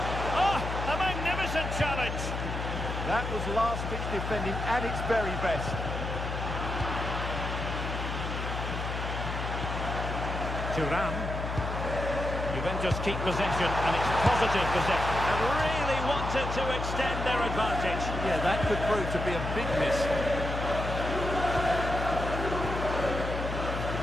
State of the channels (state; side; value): noise; left; hum, 4 dB below the sound